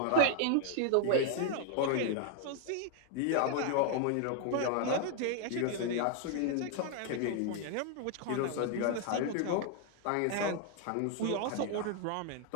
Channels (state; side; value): different; both; correlation 0.00